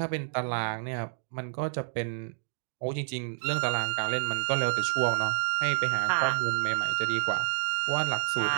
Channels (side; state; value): left; silent; digital silence